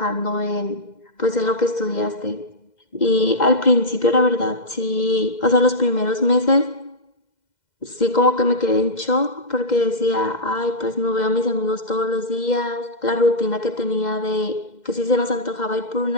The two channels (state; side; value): late; right; 2.0 ms